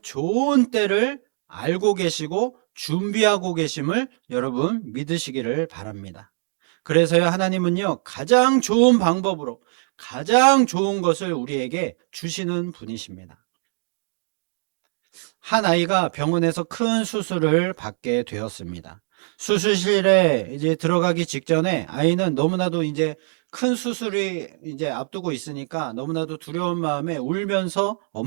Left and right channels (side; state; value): left; silent; digital silence